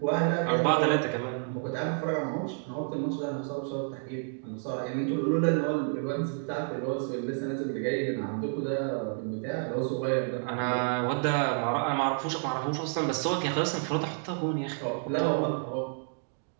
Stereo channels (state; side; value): silent; left; 58 dB below the other